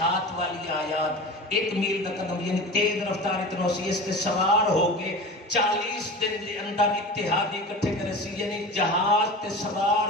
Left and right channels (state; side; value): normal; both; correlation 0.32